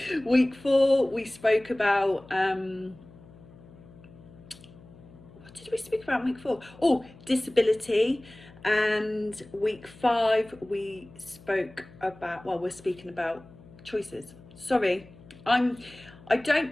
Week 4 we spoke about what did we speak about in week 4? Oh, disability. And week 5 we spoke about, well, we're speaking about choices. Sorry, I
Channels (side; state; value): left; noise; hum, 22 dB below the sound